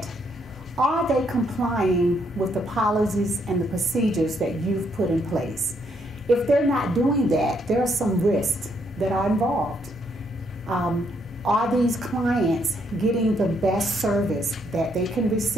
are they complying with the policies and the procedures that you've put in place? If they're not doing that, there are some risks that are involved. Are these clients getting the best service that they can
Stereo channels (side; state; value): both; normal; correlation 0.73